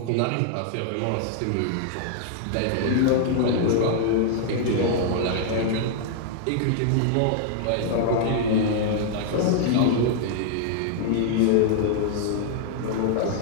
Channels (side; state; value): both; different; correlation -0.01